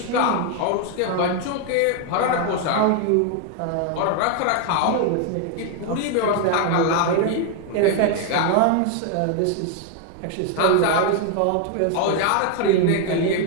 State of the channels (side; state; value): both; different; correlation 0.00